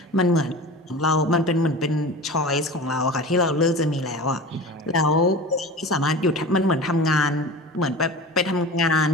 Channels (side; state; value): both; normal; correlation 0.34